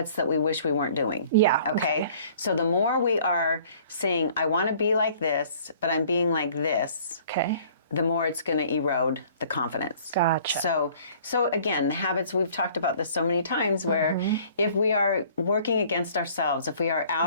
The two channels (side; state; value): both; inverted; correlation -0.54